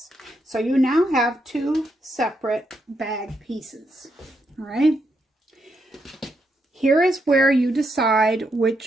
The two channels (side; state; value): both; normal; correlation 0.80